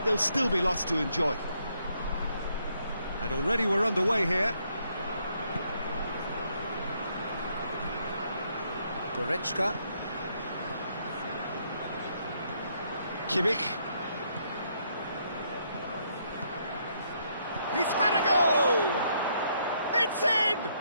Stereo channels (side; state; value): both; inverted; correlation -0.73